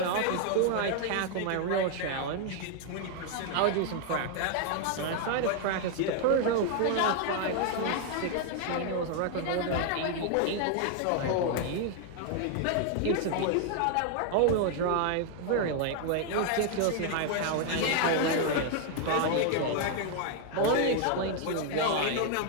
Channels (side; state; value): both; different; correlation 0.00